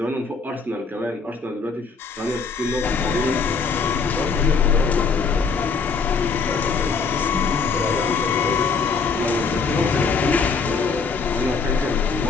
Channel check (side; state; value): right; quieter; 5.0 dB